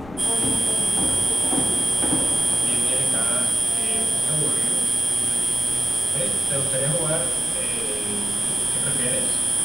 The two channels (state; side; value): noise; right; rumble, 23 dB below the sound